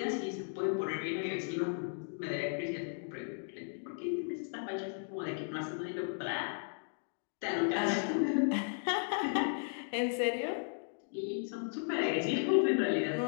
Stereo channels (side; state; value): right; silent; digital silence